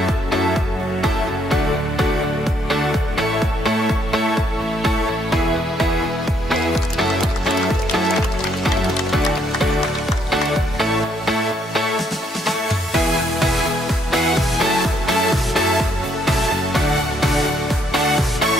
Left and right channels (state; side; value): normal; both; correlation 0.71